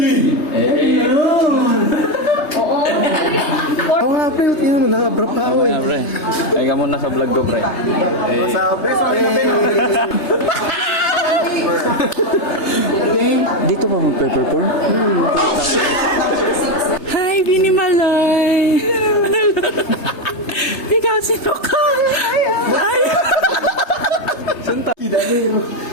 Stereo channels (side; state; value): right; late; 3.3 ms